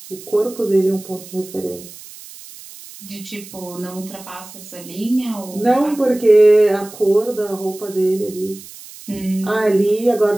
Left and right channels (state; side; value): noise; right; hiss, 17 dB below the sound